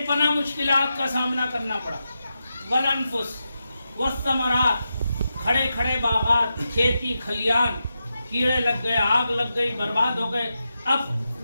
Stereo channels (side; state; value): both; inverted; correlation -0.88